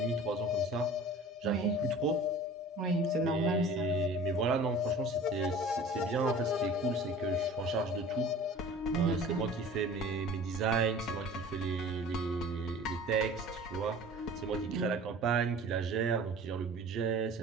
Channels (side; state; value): both; normal; correlation 0.43